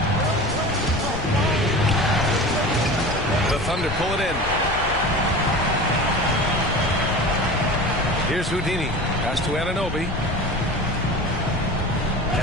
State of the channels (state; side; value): noise; left; rumble, 8 dB below the sound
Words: The Thunder pull it in. Here's Houdini. Pass to Anunoby.